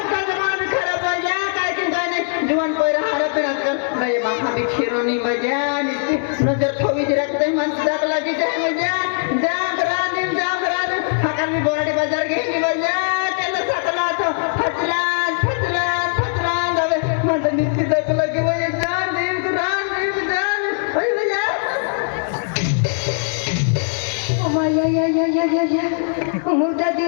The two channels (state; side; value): silent; right; 61 dB below the other